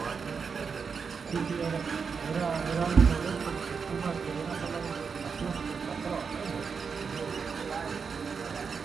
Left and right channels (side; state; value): left; quieter; 5.8 dB